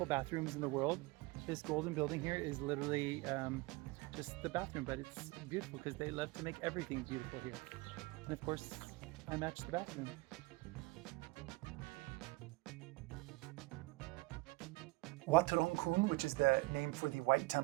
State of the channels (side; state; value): left; quieter; 23.3 dB